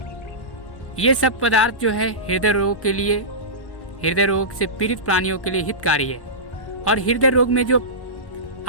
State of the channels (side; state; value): right; late; 1.1 ms